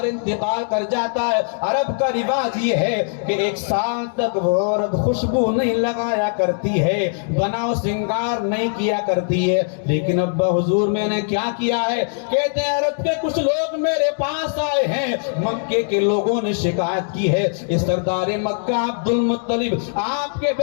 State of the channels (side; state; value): right; silent; digital silence